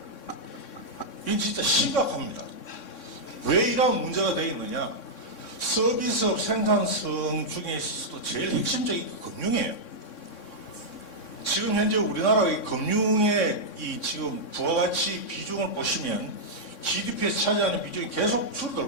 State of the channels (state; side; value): late; right; 3.6 ms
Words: 이건 진짜 심각합니다. 왜 이런 문제가 되어 있느냐? 서비스업 생산성 중에서도 제일 핵심적인 게 금융이에요. 지금 현재 우리나라의 금융의 이 지금 부가가치 비중을 보시면 GDP에서 차지하는 비중이 계속